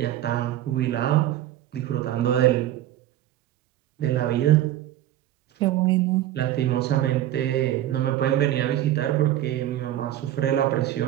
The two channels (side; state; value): left; quieter; 13.1 dB